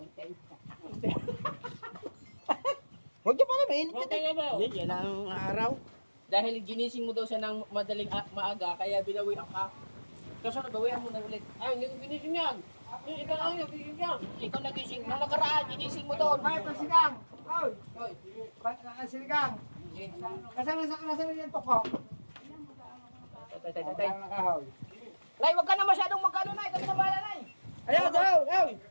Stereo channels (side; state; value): both; inverted; correlation -1.00